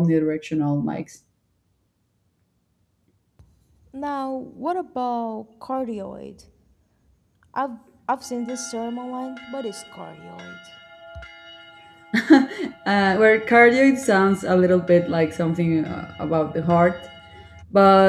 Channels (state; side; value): identical; both; correlation 1.00